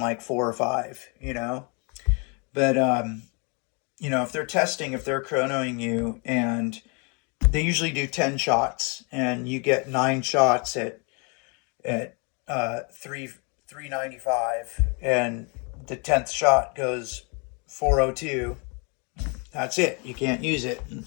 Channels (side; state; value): right; quieter; 33.9 dB